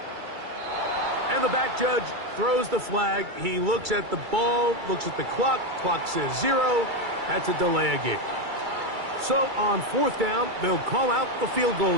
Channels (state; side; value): late; left; 2.3 ms